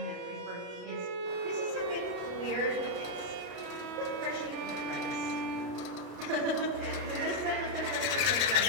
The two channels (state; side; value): late; left; 33 ms